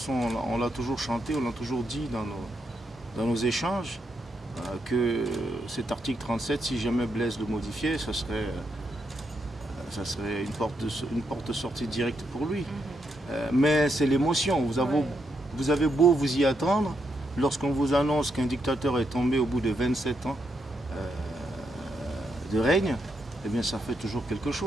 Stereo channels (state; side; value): normal; both; correlation 0.80